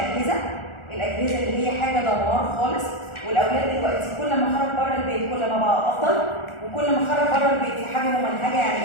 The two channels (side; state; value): right; late; 1.4 ms